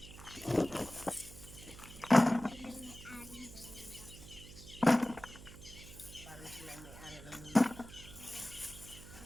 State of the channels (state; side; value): noise; right; hum, 16 dB below the sound